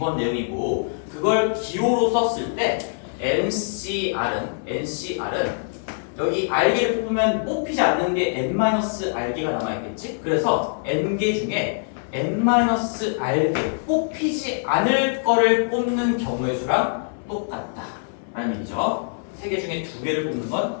내용이고 그걸 기호로 썼을 때 NCR은 여기 알개를 뽑으면 뽑히지 않는 게 n-알개가 남아있겠지? 그래서 n개 중에 n-알개 뽑히지 않을 거를 뽑는 경우의 수랑 똑같다 라는 얘기죠. 세 개 중에 두 개를 뽑는 건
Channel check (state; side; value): silent; right; 63 dB below the other